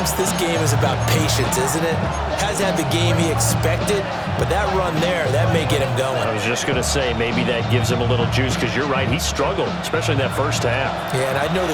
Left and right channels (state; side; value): identical; both; correlation 1.00